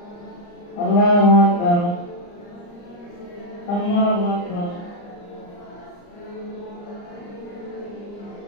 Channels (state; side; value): late; right; 34 ms